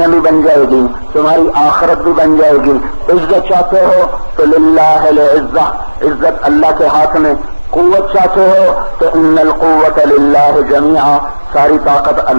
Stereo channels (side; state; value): both; inverted; correlation -1.00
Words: بھی بن جائے گی، تمہاری آخرت بھی بن جائے گی۔ عزت چاہتے ہو تو للہ العزہ، عزت اللہ کے ہاتھ میں۔ قوت چاہتے ہو تو ان القوت للہ جمیعا، ساری طاقت